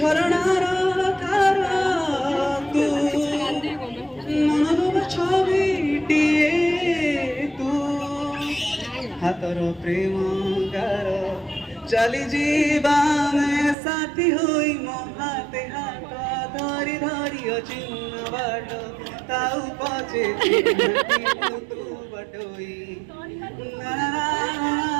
ধার তু মনর ছবিটিয়ে তু হাতর প্রেম গার চালি জীবানে সাথী হই মো হাতে হাত ধরি ধরি অচিহ্ন বাট তাও পচে তু বটই না না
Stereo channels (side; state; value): left; drops out; at 13.8 s